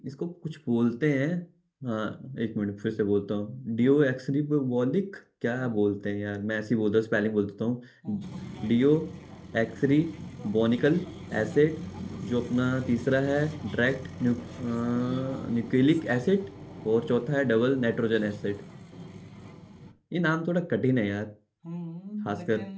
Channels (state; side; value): identical; both; correlation 1.00